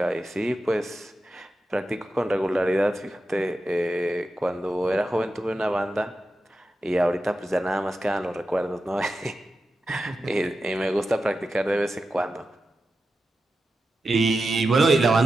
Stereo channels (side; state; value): both; normal; correlation 0.91